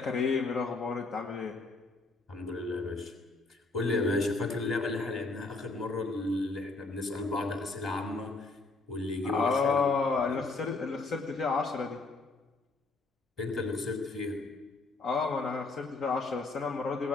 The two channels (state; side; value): quieter; right; 3.5 dB